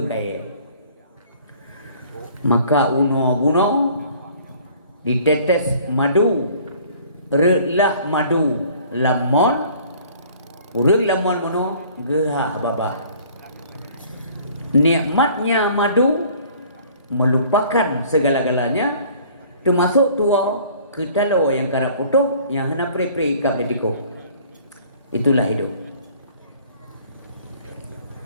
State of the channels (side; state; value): both; inverted; correlation -0.53